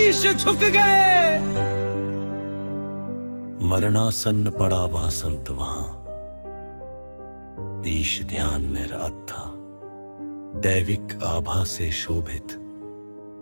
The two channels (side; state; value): both; inverted; correlation -1.00